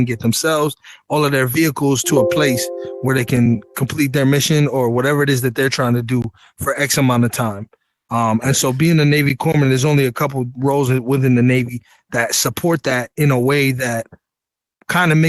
get themselves, all of their vehicles, to a place where they can complete their mission or whatever it is that they're trying to do for X amount of time. And so being a Navy corpsman, there's only a couple roles within the Navy that support that in a way that kind of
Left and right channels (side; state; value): both; identical; correlation 1.00